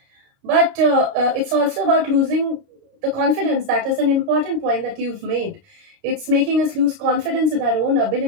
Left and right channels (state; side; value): late; left; 31 ms